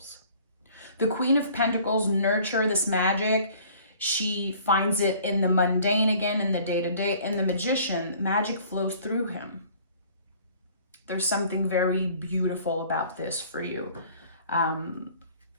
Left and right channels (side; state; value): both; inverted; correlation -0.53